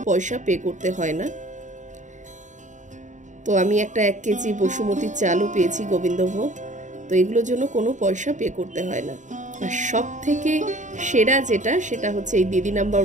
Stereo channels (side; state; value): left; late; 0.36 ms